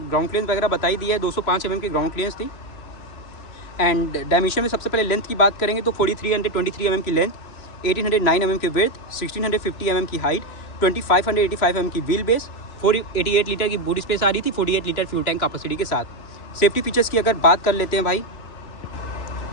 क्लियरेंस वगैरह बताई दी है, 205 mm की ग्राउंड क्लियरेंस थी। एंड डायमेंशन में सबसे पहले लेंथ की बात करेंगे तो 4323 mm की लेंथ, 1809 mm की विड्थ, 1650 mm की हाइट, 2585 mm की व्हील बेस, 488 लीटर की बूट स्पेस आ रही थी, 48 लीटर फ्यूल टैंक कैपेसिटी के साथ। सेफ्टी फीचर्स की अगर बात कर लेते हैं भाई,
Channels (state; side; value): late; right; 2.9 ms